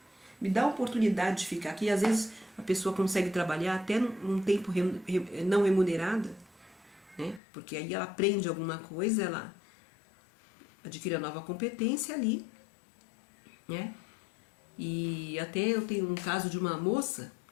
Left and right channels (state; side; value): drops out; right; at 7.4 s